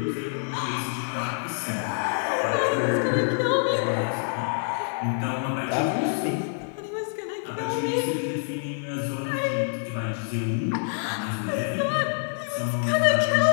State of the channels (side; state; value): right; silent; 61 dB below the other